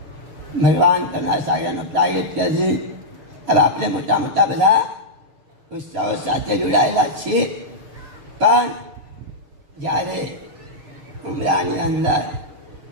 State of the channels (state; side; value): late; left; 6.8 ms